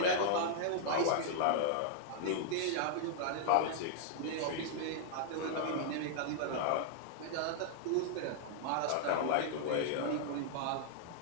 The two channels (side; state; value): both; different; correlation -0.01